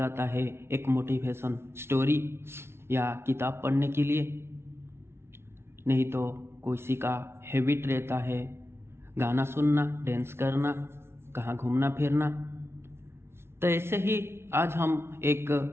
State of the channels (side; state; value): left; late; 0.12 ms